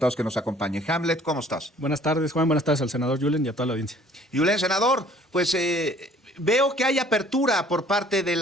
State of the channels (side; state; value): both; normal; correlation 0.55